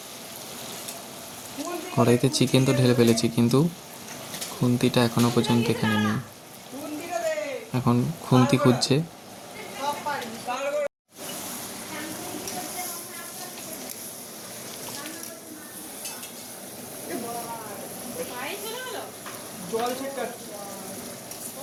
কড়াইতে চিকেন তো ঢেলে ফেলেছি, কিন্তু খুন্তিটা এখনো পর্যন্ত এখানে নেই। এখন খুন্তি খুঁজছে। জল ছিটকাচ্ছি।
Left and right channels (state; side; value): identical; both; correlation 1.00